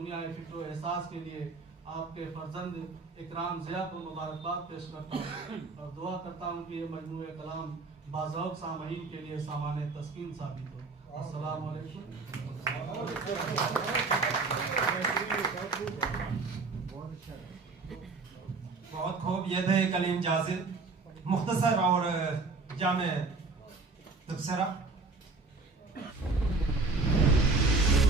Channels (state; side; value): quieter; left; 3.9 dB